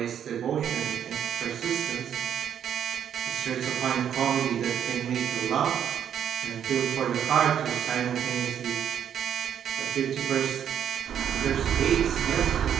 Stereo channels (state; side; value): quieter; left; 9.1 dB